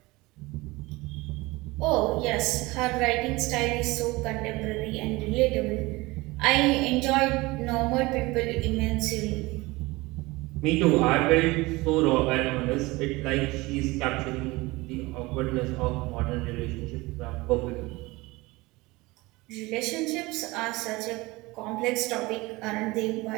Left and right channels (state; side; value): quieter; left; 22.0 dB